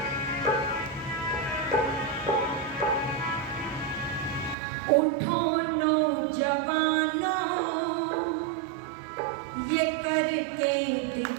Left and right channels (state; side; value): drops out; left; at 4.5 s